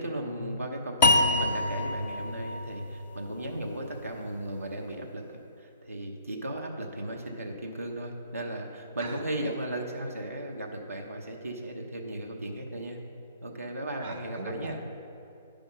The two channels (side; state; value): both; inverted; correlation -0.60